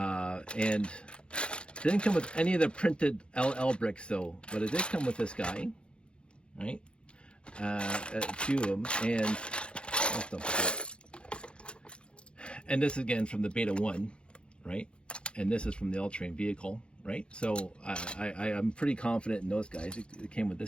and didn't come with any of the printed LL bricks though, but it did come with this guy, right? A few of them, and this again from the Beta 1, right? And this is from the all-terrain vehicle, right? So I'm pretty confident in those guys. It came with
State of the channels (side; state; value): right; late; 0.056 ms